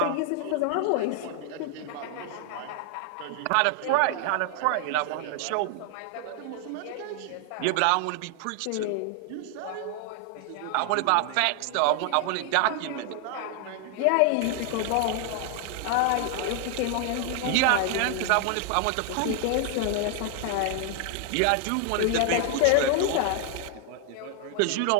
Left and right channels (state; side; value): different; both; correlation 0.00